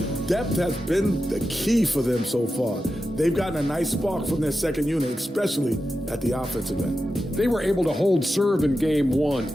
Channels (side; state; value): both; normal; correlation 0.91